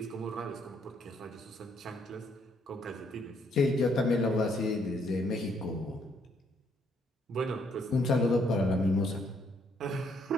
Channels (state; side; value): normal; both; correlation 0.70